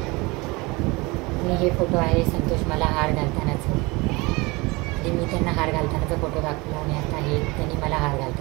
आणि हे फोटो आहे संतोष मला हार घालतानाचं, आणि मी त्यांना हार घालतानाचा फोटो दाखवला. आणि आता हे त्यांनी मला हार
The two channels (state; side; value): quieter; left; 24.5 dB